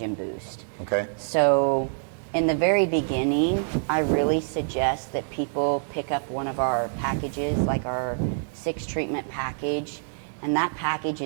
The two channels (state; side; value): silent; left; digital silence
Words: boost. Okay. So in the very beginning, I really suggest that people pick up one of our packages, like our 6 treatment package, and that package